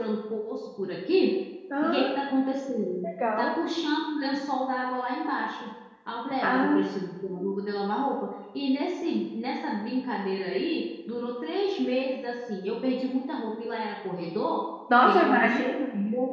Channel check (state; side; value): identical; both; correlation 1.00